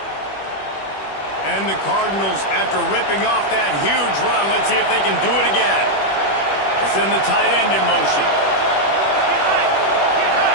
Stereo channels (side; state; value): right; late; 21 ms